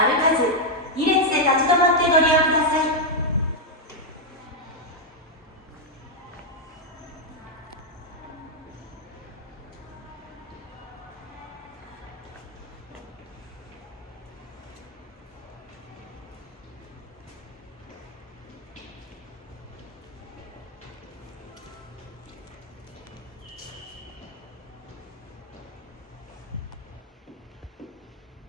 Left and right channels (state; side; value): normal; both; correlation 0.00